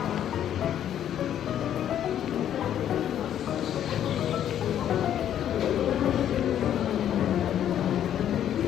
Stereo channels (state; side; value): quieter; right; 10.4 dB